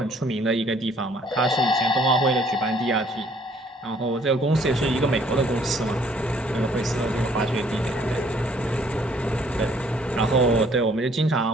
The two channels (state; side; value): normal; both; correlation 0.61